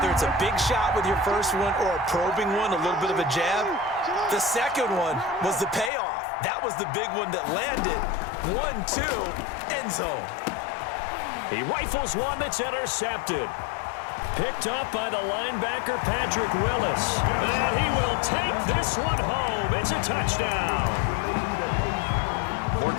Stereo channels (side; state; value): right; drops out; at 5.9 s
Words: it's a big shot with your first one or a probing one, a little bit of a jab, the second one was the payoff. That was the big one that landed. 1-2, end zone. He rifles one that's intercepted. Picked up by the linebacker, Patrick Willis. And he will take this one home. It's a touchdown.